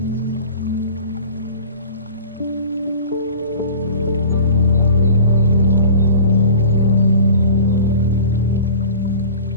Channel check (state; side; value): inverted; both; correlation -0.40